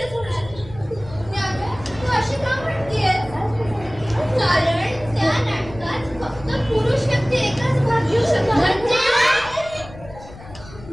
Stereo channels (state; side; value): noise; left; rumble, 17 dB below the sound